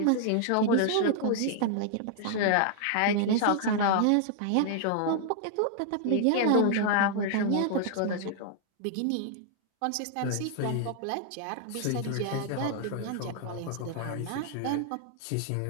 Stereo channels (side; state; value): both; different; correlation -0.01